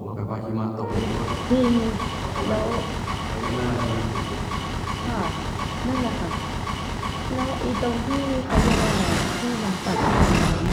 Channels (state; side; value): identical; both; correlation 1.00